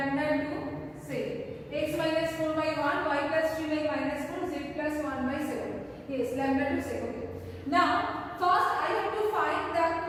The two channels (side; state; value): both; identical; correlation 1.00